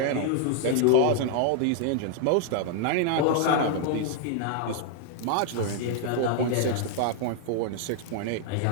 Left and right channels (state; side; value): different; both; correlation 0.00